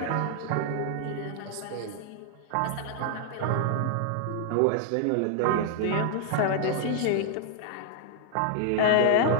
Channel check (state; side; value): different; both; correlation 0.00